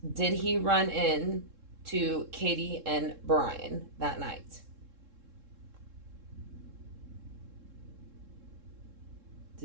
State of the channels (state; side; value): late; left; 3.7 ms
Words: did he run in to Katie and Brian that night?